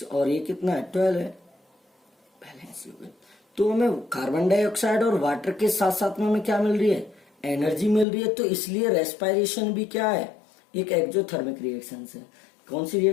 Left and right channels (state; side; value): drops out; right; at 8.1 s